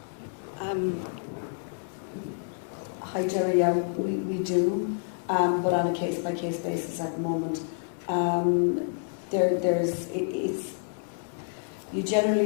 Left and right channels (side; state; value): right; silent; 59 dB below the other